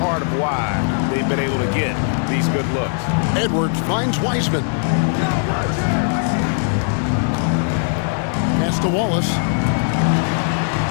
of why they've been able to get these good looks. Edwards finds Wiseman. Pass to Wallace.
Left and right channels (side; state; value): right; silent; 66 dB below the other